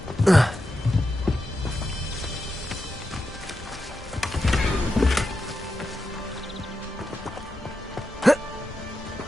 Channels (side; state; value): both; normal; correlation 0.88